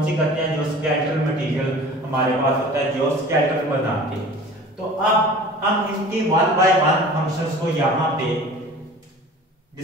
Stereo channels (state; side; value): normal; both; correlation 0.42